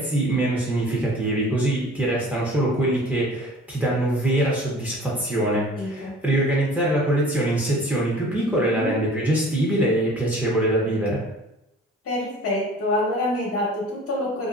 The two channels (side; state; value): both; normal; correlation 0.46